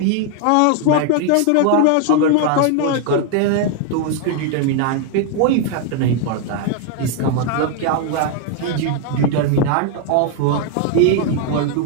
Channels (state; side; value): different; both; correlation 0.00